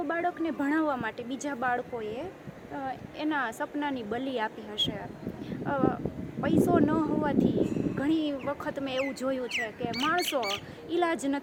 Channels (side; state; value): both; identical; correlation 1.00